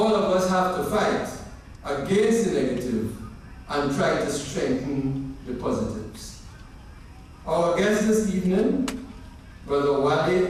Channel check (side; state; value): both; identical; correlation 1.00